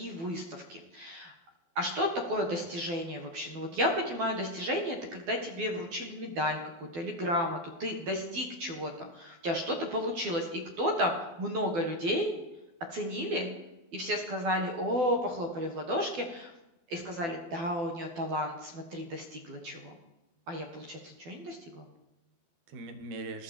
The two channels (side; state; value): left; late; 12 ms